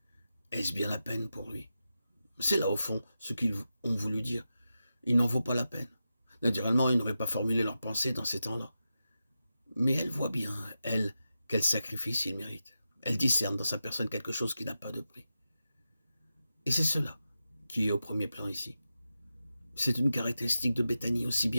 Est-ce bien la peine pour lui? C'est là, au fond, ce qu'ils ont voulu dire. Il n'en vaut pas la peine. Naturellement, ils n'auraient pas formulé leur pensée dans ces temps-là. Mais elle voit bien, elle, quel sacrifice il mérite. Elle discerne dans sa personne quelque chose qui n'a pas de prix. Et c'est cela qui est au premier plan ici. C'est une caractéristique de Béthanie aussi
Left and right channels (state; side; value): inverted; both; correlation -0.90